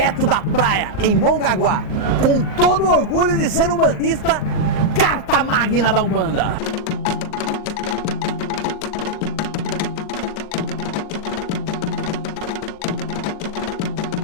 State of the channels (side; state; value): right; late; 39 ms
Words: da praia, em Mongaguá, com todo o orgulho de ser um bandista, carta magna da Umbanda.